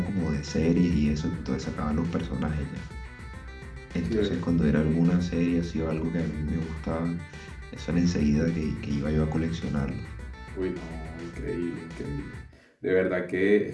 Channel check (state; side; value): identical; both; correlation 1.00